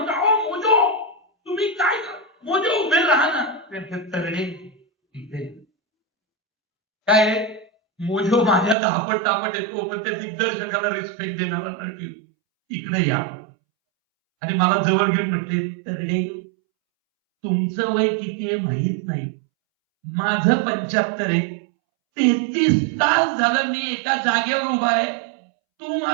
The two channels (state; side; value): drops out; left; at 8.8 s